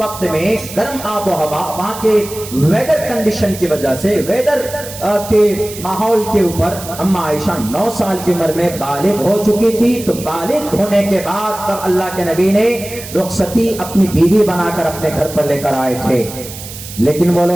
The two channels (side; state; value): right; noise; hiss, 13 dB below the sound